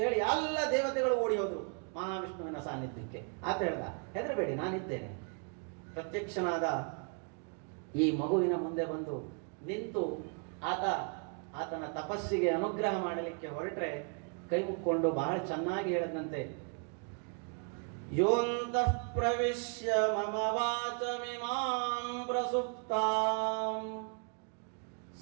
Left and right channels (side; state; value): left; quieter; 40.0 dB